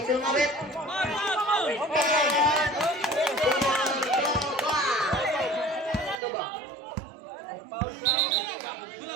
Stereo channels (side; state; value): left; drops out; at 6.2 s